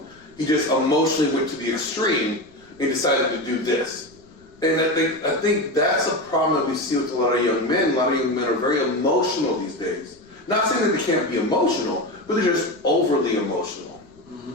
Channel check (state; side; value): noise; left; rumble, 29 dB below the sound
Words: He just emotionally went to the extreme and decided to do this. And I think that's a problem that we see with a lot of young men. A lot of young men are very emotional these days. Not saying that they can't be emotional, but they're just overly emotional.